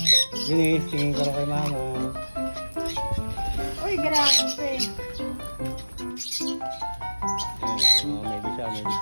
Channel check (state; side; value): inverted; both; correlation -1.00